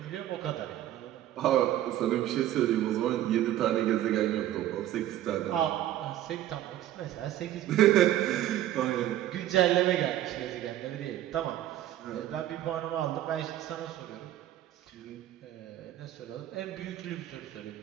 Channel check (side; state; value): left; quieter; 13.0 dB